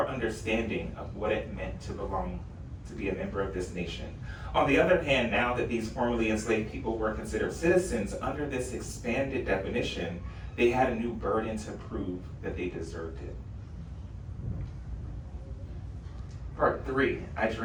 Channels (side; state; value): both; identical; correlation 1.00